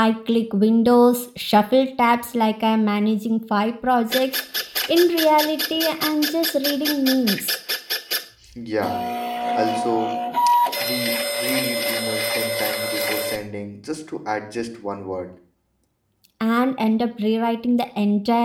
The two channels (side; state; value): both; identical; correlation 1.00